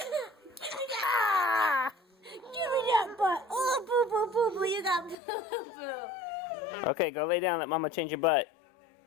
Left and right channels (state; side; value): drops out; right; at 5.2 s